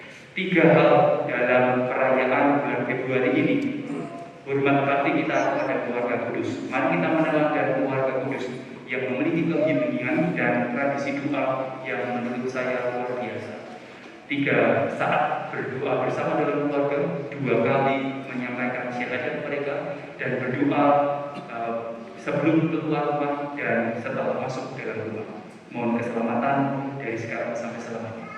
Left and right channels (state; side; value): identical; both; correlation 1.00